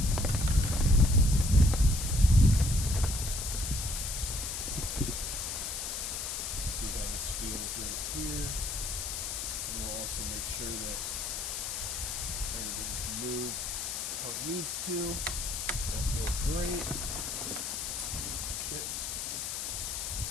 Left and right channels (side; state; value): left; noise; hiss, 3 dB below the sound